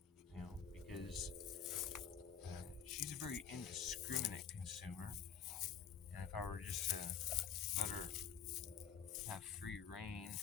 because she's a very indiscriminate consumer, and if I were just to let her have free reign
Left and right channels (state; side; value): quieter; right; 8.0 dB